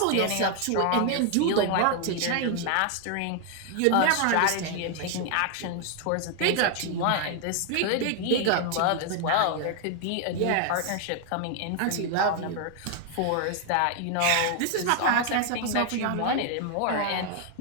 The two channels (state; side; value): different; both; correlation 0.00